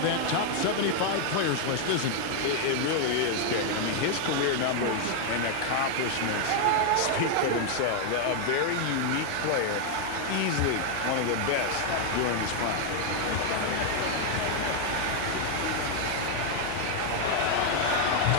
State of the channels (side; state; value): both; different; correlation 0.00